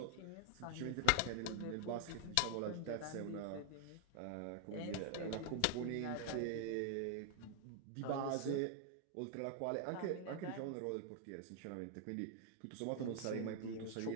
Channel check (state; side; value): different; both; correlation 0.00